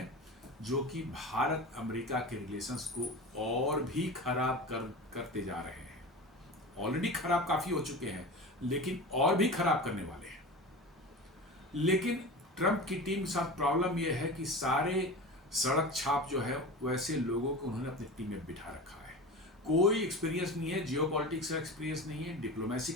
जो कि भारत अमेरिका के रिलेशंस को और भी खराब करते जा रहे हैं। ऑलरेडी खराब काफी हो चुके हैं, लेकिन और भी खराब करने वाले हैं। लेकिन ट्रंप की टीम के साथ प्रॉब्लम यह है कि सारे सड़क छाप जो है वैसे लोगों को उन्होंने अपनी टीम में बिठा रखा है। कोई एक्सपीरियंस नहीं है, जियोपॉलिटिक्स का एक्सपीरियंस नहीं है, डिप्लोमेसी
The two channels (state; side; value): normal; both; correlation 0.30